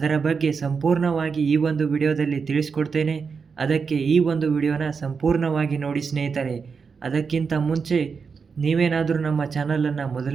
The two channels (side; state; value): left; quieter; 5.5 dB